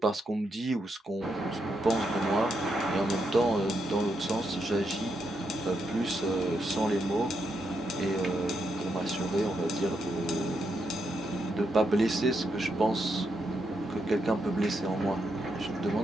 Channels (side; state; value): both; normal; correlation 0.81